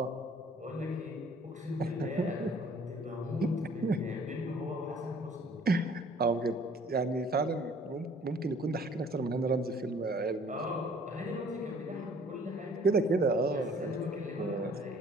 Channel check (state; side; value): normal; both; correlation 0.56